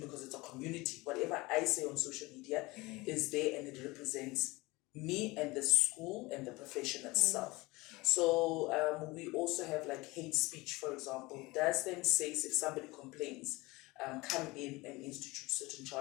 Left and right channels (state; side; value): quieter; right; 22.3 dB